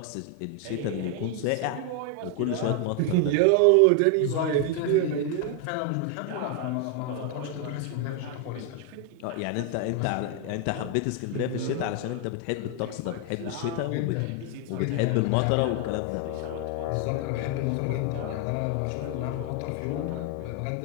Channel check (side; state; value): both; different; correlation 0.00